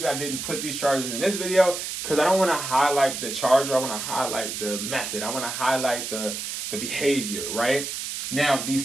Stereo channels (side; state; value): right; noise; hiss, 5 dB below the sound